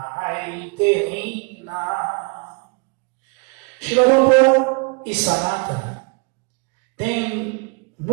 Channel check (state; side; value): quieter; left; 33.9 dB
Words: Hina. Srila Prabhupada e Sanatana têm